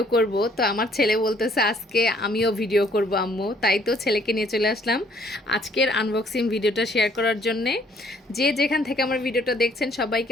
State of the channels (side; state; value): both; normal; correlation 0.63